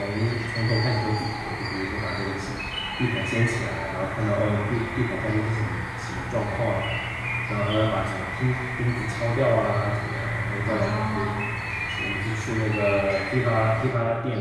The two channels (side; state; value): both; identical; correlation 1.00